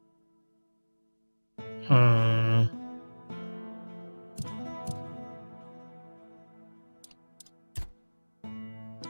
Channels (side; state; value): both; inverted; correlation -1.00